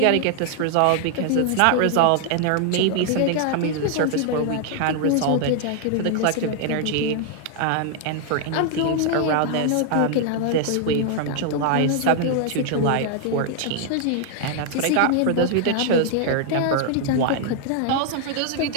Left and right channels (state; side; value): different; both; correlation 0.00